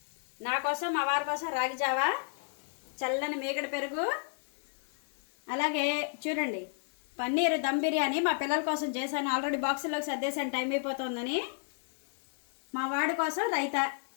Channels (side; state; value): right; silent; digital silence